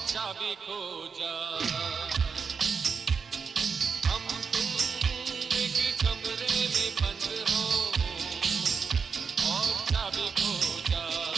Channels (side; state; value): left; quieter; 5.7 dB